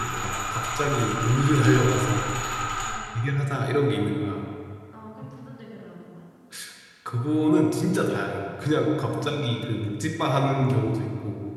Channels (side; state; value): both; identical; correlation 1.00